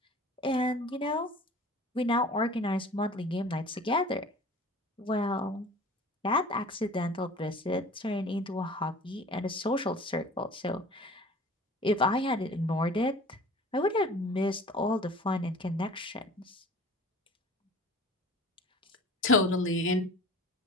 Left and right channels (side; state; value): both; normal; correlation 0.44